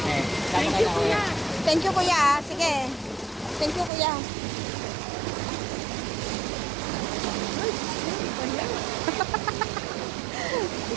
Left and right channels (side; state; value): left; drops out; at 3.9 s